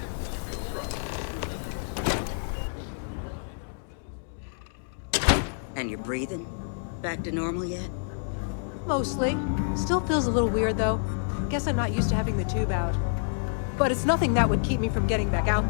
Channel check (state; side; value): silent; right; digital silence